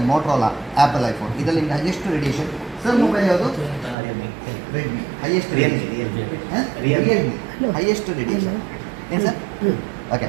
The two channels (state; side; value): drops out; left; at 4.0 s